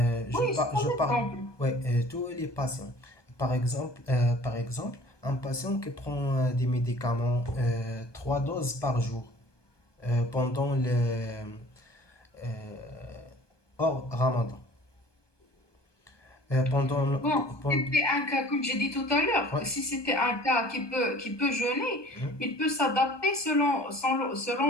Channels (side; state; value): right; late; 1.2 ms